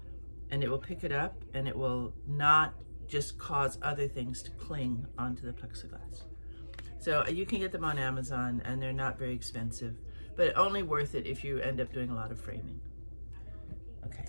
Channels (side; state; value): both; inverted; correlation -1.00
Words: and it will pick it up, and it will not just cause other things to cling onto the plexiglass. So you can get them on Amazon, and they're not very expensive, but only worth it if you end up doing a lot of framing. Okay,